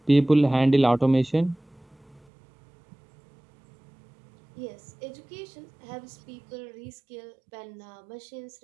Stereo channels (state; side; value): drops out; left; at 2.2 s